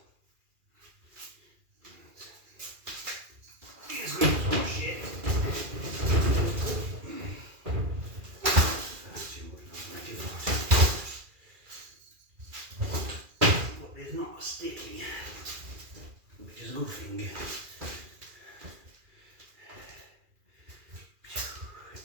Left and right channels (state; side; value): late; left; 2.4 ms